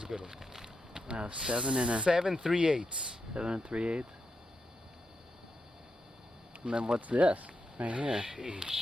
a good one. Wow, 7 and a 7 3/8. 7 3/8. And then what's this right here?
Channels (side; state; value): both; normal; correlation 0.86